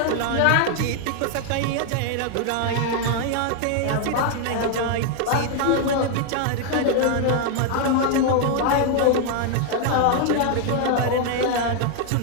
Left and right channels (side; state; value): both; different; correlation 0.00